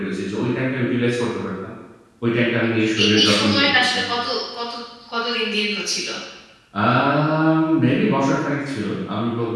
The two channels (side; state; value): both; identical; correlation 1.00